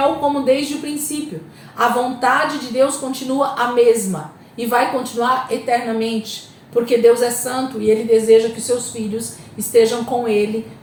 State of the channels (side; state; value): both; identical; correlation 1.00